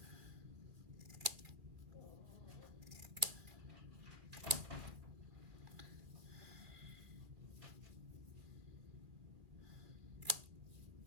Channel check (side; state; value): left; late; 2.5 ms